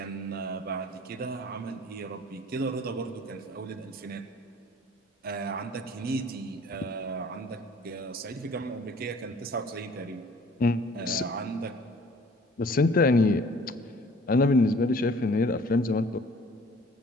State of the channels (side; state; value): both; normal; correlation 0.52